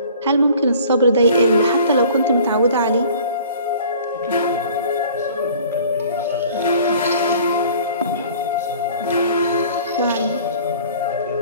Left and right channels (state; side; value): inverted; both; correlation -0.49